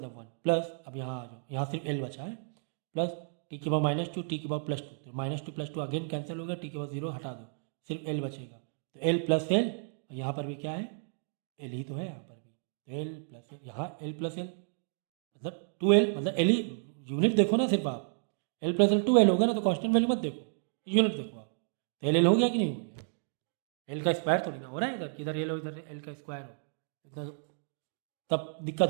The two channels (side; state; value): left; silent; digital silence